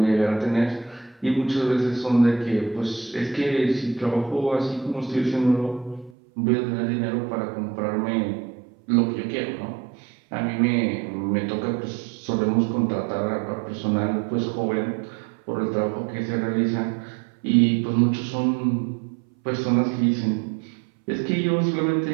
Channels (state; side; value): drops out; left; at 6.1 s